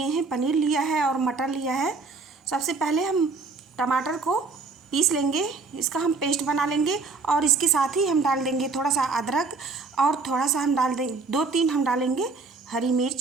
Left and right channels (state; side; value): quieter; left; 4.2 dB